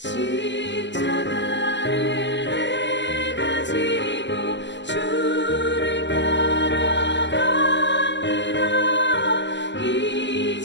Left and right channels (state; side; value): late; right; 0.53 ms